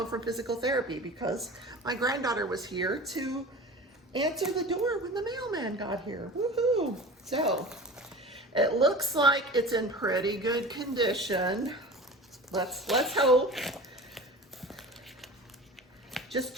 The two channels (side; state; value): both; normal; correlation 0.36